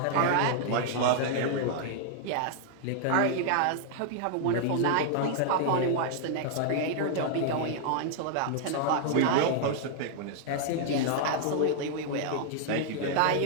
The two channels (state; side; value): different; both; correlation -0.01